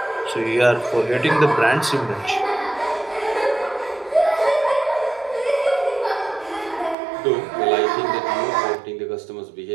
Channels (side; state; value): left; drops out; at 7.0 s